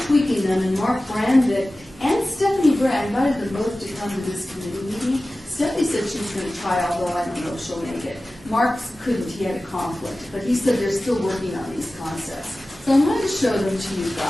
tweaking them, and Mark Brandick and Stephanie Gray, I invited them both to come to this committee meeting. Stephanie said she was going to try, although I don't know if she'll make it. Mark couldn't, he had a conflict, but he said they're still working on these concepts. So I'm going to show them to you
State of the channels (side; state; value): both; normal; correlation 0.96